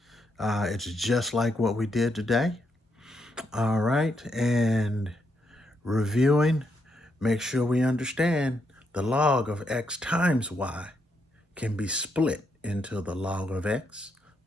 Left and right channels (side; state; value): both; normal; correlation 0.79